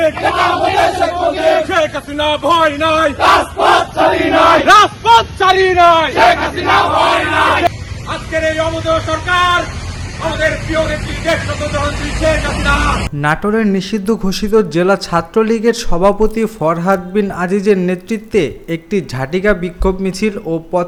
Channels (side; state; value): both; identical; correlation 1.00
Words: শেখ হাসিনা ভয় নাই, রাজপথ ছাড়ি নাই। আজকের এই অমোদয় সরকার আমাদের প্রিয় নেত্রী দেশনেত্রী শেখ হাসিনা। নাটোরের নিষিদ্ধ ঘোষিত জেলা ছাত্রলীগের সভাপতি ফরহাদ বিন আজিজের নেতৃত্বে একটি ঝাটিকা বিক্ষোভ মিছিল ও